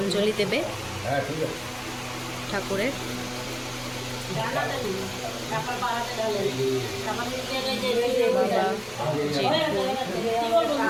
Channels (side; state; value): both; identical; correlation 1.00